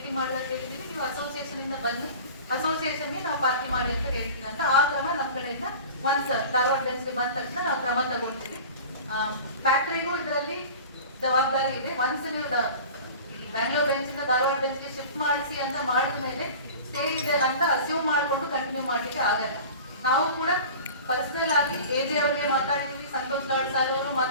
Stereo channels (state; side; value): inverted; both; correlation -0.38